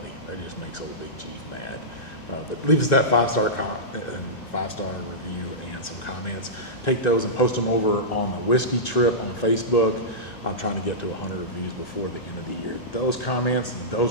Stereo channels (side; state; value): right; late; 2.0 ms